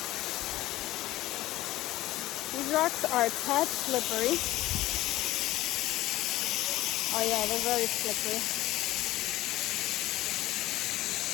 These rocks are a tad slippery. Oh yeah, they're very slippery.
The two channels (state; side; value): quieter; right; 16.5 dB